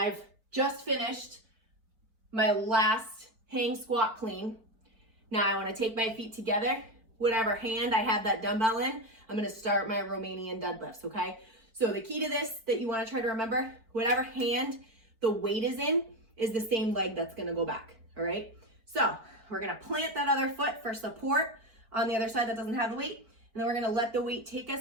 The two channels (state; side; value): late; left; 4.5 ms